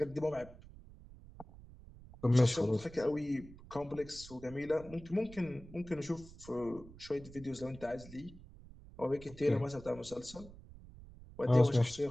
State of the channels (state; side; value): noise; right; rumble, 18 dB below the sound